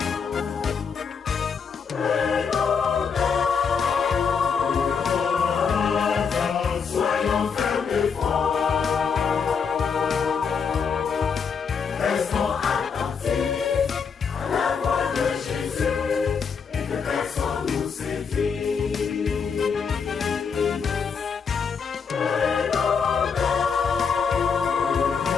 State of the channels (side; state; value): right; quieter; 6.1 dB